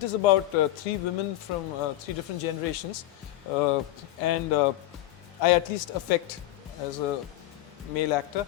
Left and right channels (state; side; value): quieter; right; 15.2 dB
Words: is about 3 women from 3 different generations, and I at least affect as a male actor